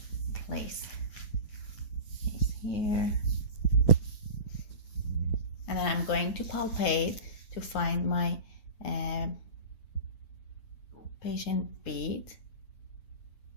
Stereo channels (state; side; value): late; right; 9.4 ms